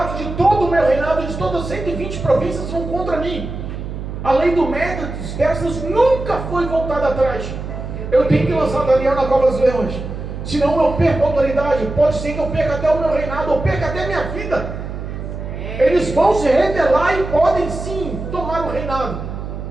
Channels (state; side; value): noise; right; hum, 7 dB below the sound